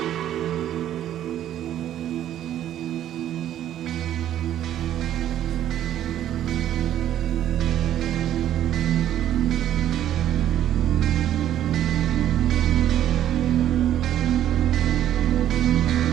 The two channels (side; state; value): left; quieter; 11.5 dB